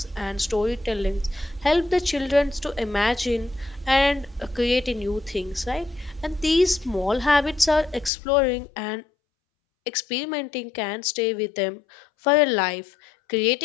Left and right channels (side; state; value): right; drops out; at 8.1 s